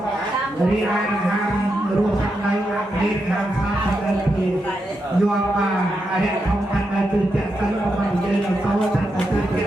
រីឯដង្ហើមរស់ខាងនៅអាមេរិកខាងសាខាងនៅពីយកមកអរិយធម្មខាងនៅគឺចាក់សិនរបស់យើងនៅតោចាក់ទៅចា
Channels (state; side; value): normal; both; correlation 0.85